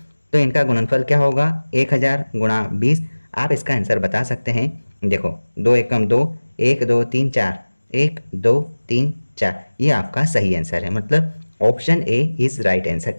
तो इनका गुणनफल क्या होगा, 1000 गुणा 20। आप इसका आंसर बता सकते हैं। देखो 2 एकम 2, 1 2 3 4, 1 2 3 4, ये आपका सही आंसर है, मतलब option A is right answer.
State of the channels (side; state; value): both; inverted; correlation -1.00